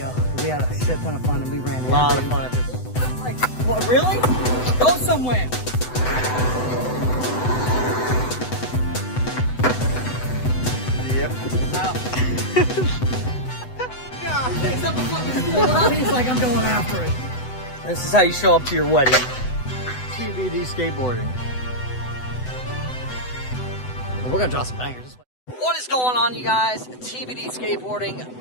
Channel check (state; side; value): late; right; 7.9 ms